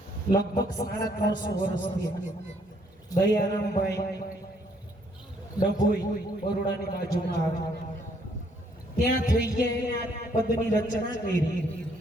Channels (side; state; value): both; normal; correlation 0.67